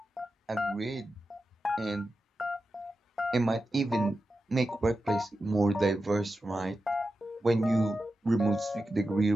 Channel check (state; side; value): normal; both; correlation 0.91